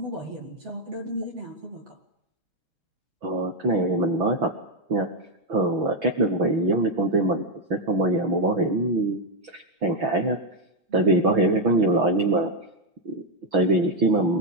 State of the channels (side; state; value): left; late; 6.1 ms